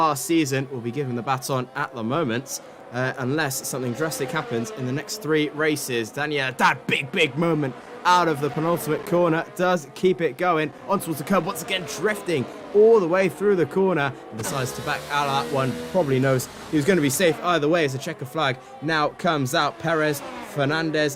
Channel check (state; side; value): identical; both; correlation 1.00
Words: season, will be given the baton at the moment, unless something drastic happens in the next 3 races. Daniela, that big moment out of the penultimate corner, does keep it going on towards the curb, once again drifting all the way through the corner, and decides to back out of that one. Probably knows he was going to be safe either way as a checker flag now comes out. Perez,